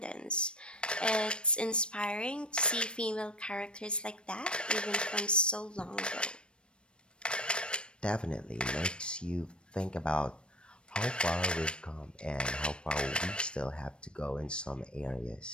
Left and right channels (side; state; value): right; late; 0.056 ms